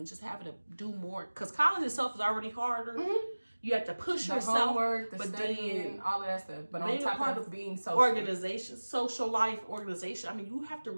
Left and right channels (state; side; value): inverted; both; correlation -1.00